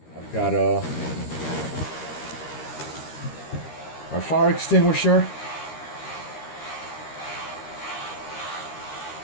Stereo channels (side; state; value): right; late; 13 ms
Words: I've got my fire extinguisher.